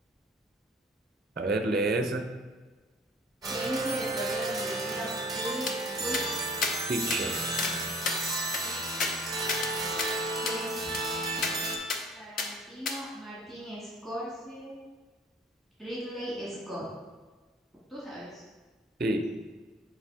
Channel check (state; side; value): normal; both; correlation 0.49